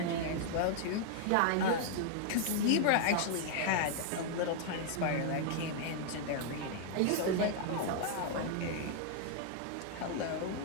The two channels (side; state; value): both; different; correlation 0.00